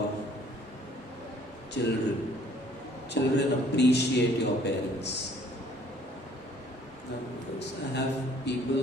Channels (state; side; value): normal; both; correlation 0.58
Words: children. Children appreciate your parents. I have people